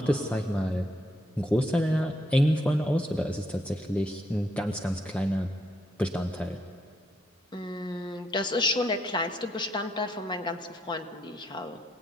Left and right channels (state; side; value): normal; both; correlation 0.76